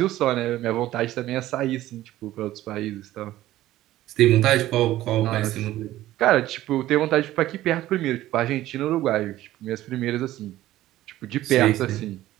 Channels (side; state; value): left; quieter; 14.9 dB